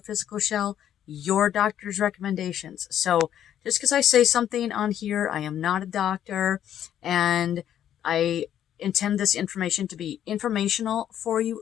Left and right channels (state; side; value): quieter; right; 10.5 dB